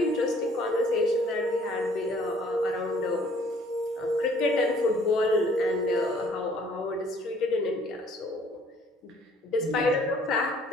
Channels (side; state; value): both; normal; correlation 0.58